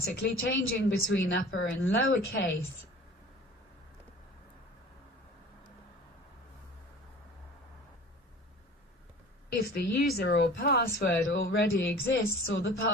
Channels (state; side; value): normal; both; correlation 0.42